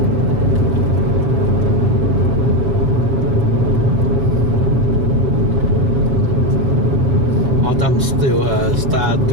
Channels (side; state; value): left; late; 6.8 ms